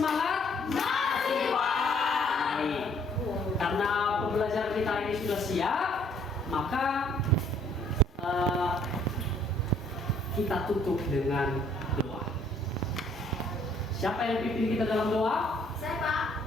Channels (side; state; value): both; normal; correlation 0.62